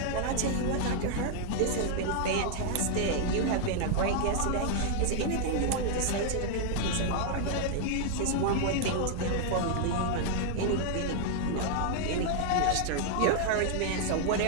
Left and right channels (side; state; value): both; different; correlation 0.00